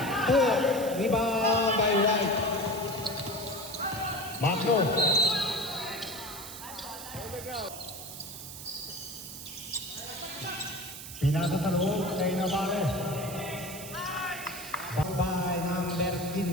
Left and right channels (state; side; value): noise; right; hiss, 11 dB below the sound